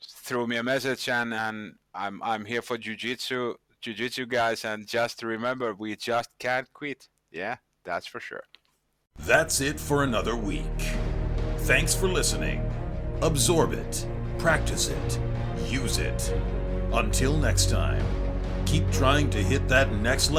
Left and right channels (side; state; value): both; identical; correlation 1.00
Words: throw me a message, and I'm here for Jiu-Jitsu guys, and just remember, we just can't quit. Yeah, that's for sure. That's it for another week. Thanks for listening. Absorb it, practice it, use it. Until next time, keep trying to hit that next